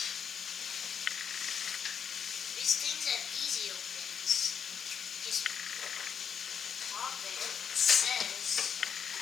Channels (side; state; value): right; quieter; 7.4 dB